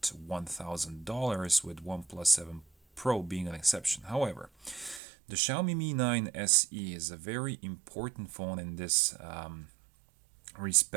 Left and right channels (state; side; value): drops out; left; at 5.0 s